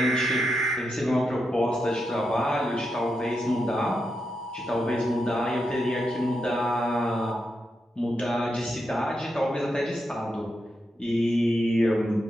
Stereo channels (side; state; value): both; normal; correlation 0.85